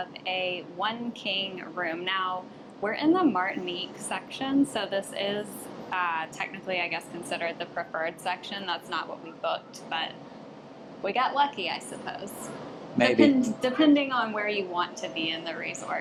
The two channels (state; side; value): identical; both; correlation 1.00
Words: a one king room. Now we're in the Martinique section, so this is technically I guess considered the preferred section. That's not what we booked, but we got lucky, I suppose. Depending on where you want to be in the